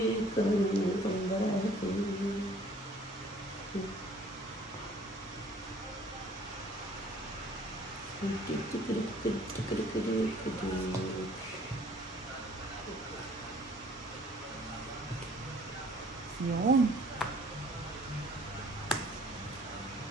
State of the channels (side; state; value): both; normal; correlation 0.55